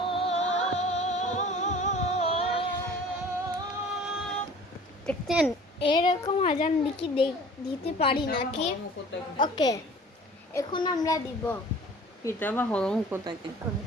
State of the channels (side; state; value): both; normal; correlation 0.46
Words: দেখতেন এরকম আজান দিতে পারি নাকি? ওকে, এখন আমরা দিব কিতাবা হরম কোথাকে